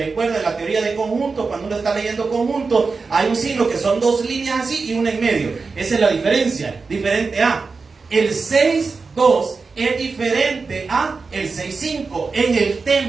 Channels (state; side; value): quieter; left; 4.5 dB